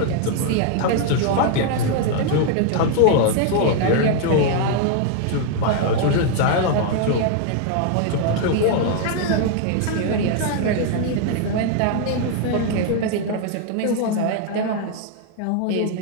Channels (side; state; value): both; different; correlation 0.00